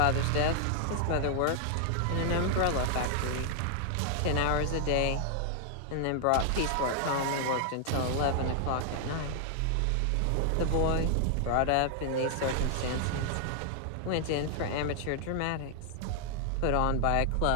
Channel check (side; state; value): both; different; correlation 0.00